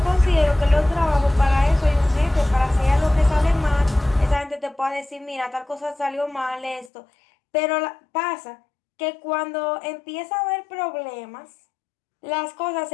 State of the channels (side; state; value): right; drops out; at 6.9 s